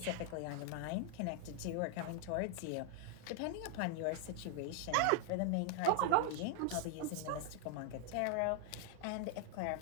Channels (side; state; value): both; different; correlation 0.00